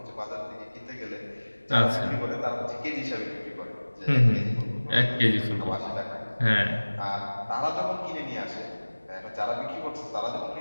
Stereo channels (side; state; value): both; inverted; correlation -1.00